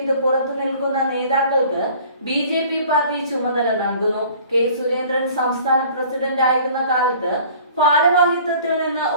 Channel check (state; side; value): inverted; both; correlation -0.50